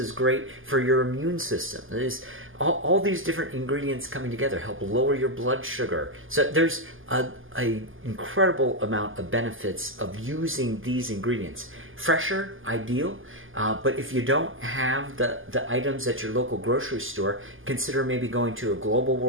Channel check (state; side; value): late; left; 0.58 ms